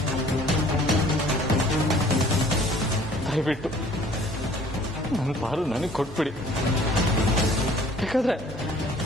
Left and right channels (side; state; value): both; normal; correlation 0.54